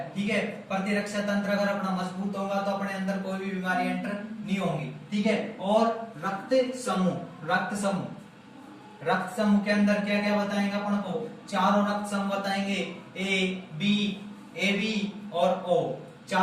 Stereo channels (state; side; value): identical; both; correlation 1.00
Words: ठीक है। प्रतिरक्षा तंत्र अगर अपना मजबूत होगा तो अपने अंदर कोई भी बीमारी एंटर नहीं होंगी, ठीक है। और रक्त समूह, रक्त समूह, रक्त समूह के अंदर क्या क्या बताएंगे अपन को, चारों रक्त समूह बताएंगे, ए बी और ओ,